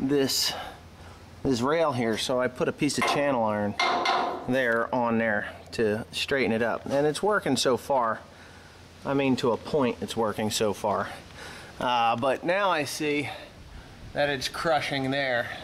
rail here. So I put a piece of channel iron there on there to straighten it up, and it's working so far. I mean, to a point it's working so far, but now I see that it's crushing there.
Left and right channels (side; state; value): both; identical; correlation 1.00